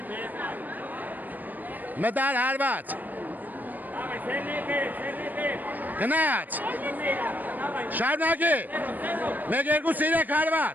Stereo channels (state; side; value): late; left; 0.085 ms